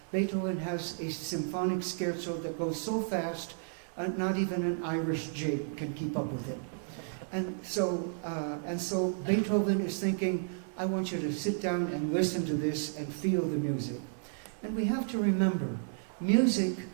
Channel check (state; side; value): silent; left; digital silence